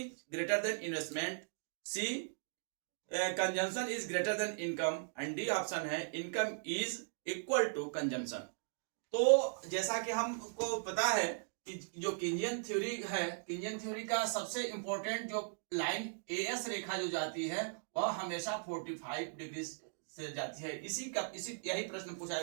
greater than investment, C consumption is greater than income, and D option है income is equal to consumption. तो जैसा कि हमको पता है कि जो Keynesian theory है, कीनियन थ्योरी का सबसे इंपॉर्टेंट जो लाइन एएस रेखा जो जाती है वह हमेशा 45 डिग्री से जाती है। इसी यही प्रश्न पूछा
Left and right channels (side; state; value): left; silent; digital silence